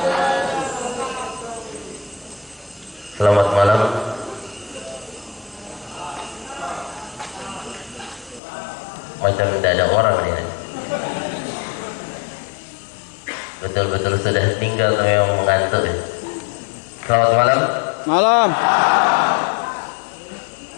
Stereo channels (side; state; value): right; drops out; at 8.4 s